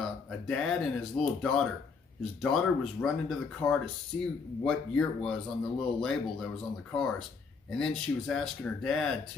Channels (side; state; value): right; quieter; 5.0 dB